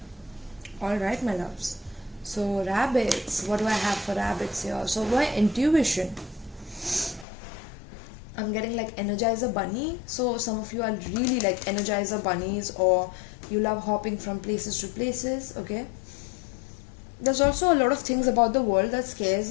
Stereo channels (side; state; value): right; drops out; at 7.2 s